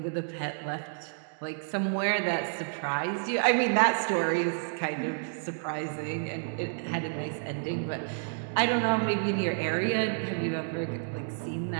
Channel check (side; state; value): left; silent; digital silence